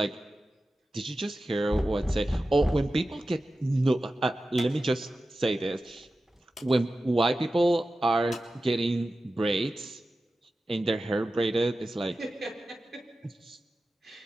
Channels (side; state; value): both; normal; correlation 0.94